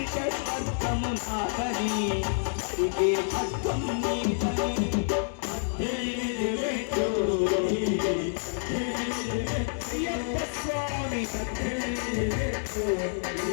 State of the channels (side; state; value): right; silent; digital silence